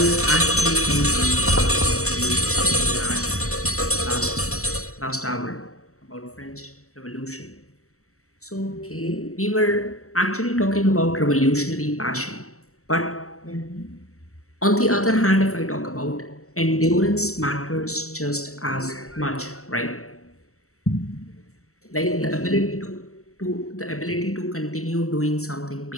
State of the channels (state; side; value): late; right; 0.64 ms